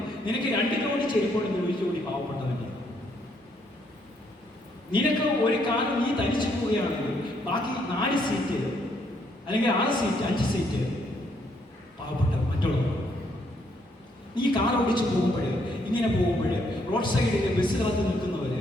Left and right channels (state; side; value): normal; both; correlation 0.71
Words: നിനക്ക് 2 ജോഡി ചെരുപ്പുണ്ടെങ്കിൽ 1 ജോഡി പാവപ്പെട്ടവന്റെ. നിനക്ക് ഒരു കാലം നീ തനിച്ചു പോവുകയാണെങ്കിൽ ബാക്കി 4 സീറ്റ് അല്ലെങ്കിൽ 6 സീറ്റ് 5 സീറ്റ് പാവപ്പെട്ട മറ്റുള്ളവർ. നീ കാർ ഓടിച്ച് പോകുമ്പോൾ, ഇങ്ങനെ പോകുമ്പോൾ റോഡ് സൈഡിൽ ബസ് കാത്ത് നിൽക്കുന്നവര്,